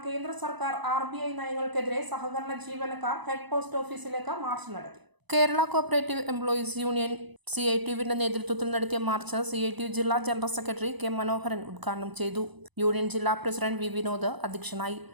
കേന്ദ്ര സർക്കാർ RBI നയങ്ങൾക്കെതിരെ സഹകരണ ജീവനക്കാർ ഹെഡ് പോസ്റ്റ് ഓഫീസിലേക്ക് മാർച്ച് നടത്തി. കേരള കോഓപ്പറേറ്റീവ് എംപ്ലോയീസ് യൂണിയൻ CITUവിന്റെ നേതൃത്വത്തിൽ നടത്തിയ മാർച്ച് CITU ജില്ലാ ജനറൽ സെക്രട്ടറി K. മനോഹരൻ ഉദ്ഘാടനം ചെയ്തു. യൂണിയൻ ജില്ലാ പ്രസിഡന്റ് V. വിനോദ് അധ്യക്ഷനായി.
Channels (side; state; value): left; late; 1.0 ms